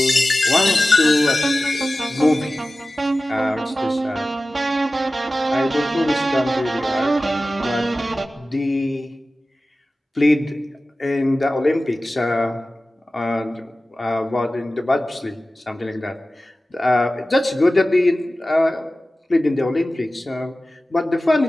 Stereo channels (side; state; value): both; normal; correlation 0.96